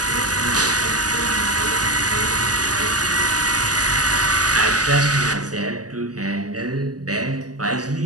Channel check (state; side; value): late; left; 0.67 ms